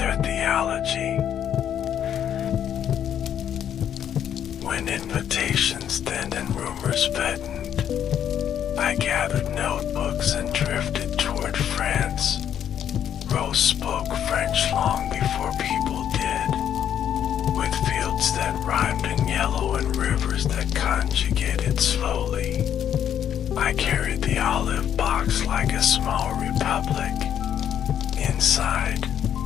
theology. When invitations thinned and rumors fattened, I gathered notebooks and drifted toward France. Rose spoke French long before people did, with fields that rhymed in yellow and rivers that conjugated slowly. I carried the olive box like a small republic. Inside,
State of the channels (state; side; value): quieter; right; 9.6 dB